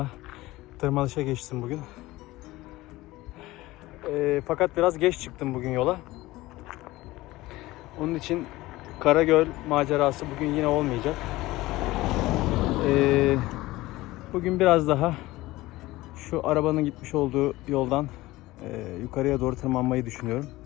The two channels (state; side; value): quieter; right; 18.5 dB